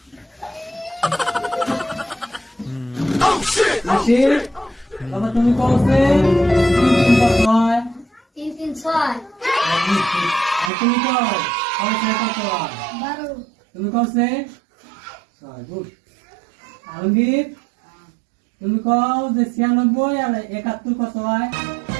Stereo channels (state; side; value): drops out; left; at 10.7 s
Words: আশির বাবা তুমি কসে 3 কত হয় 3 আর তুমি কও কসে কত হয় 12 তুমি কসে গুড আলমগীর তুমি কও যে 96 আর 71 কত হয়